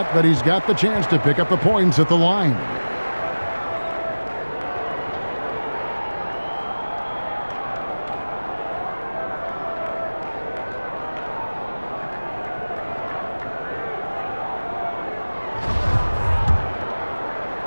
but he's got the chance to pick up the points at the line.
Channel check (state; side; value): inverted; both; correlation -1.00